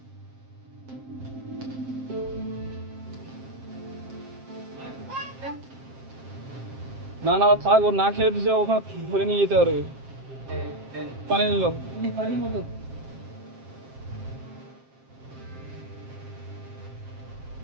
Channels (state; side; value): late; left; 7.5 ms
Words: না না থাক, ও না খেয়ে দিছে, ওখানে ধরে নিয়ে যেতে পারবে। পানি নিল।